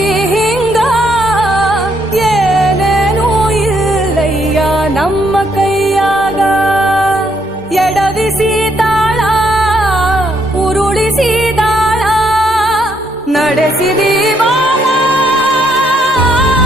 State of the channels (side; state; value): both; normal; correlation 0.72